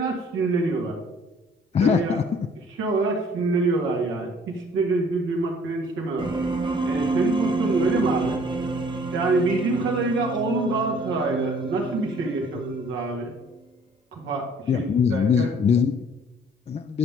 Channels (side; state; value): both; normal; correlation 0.56